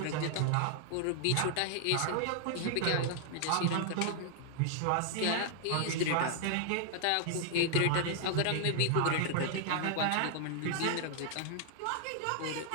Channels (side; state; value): both; different; correlation 0.00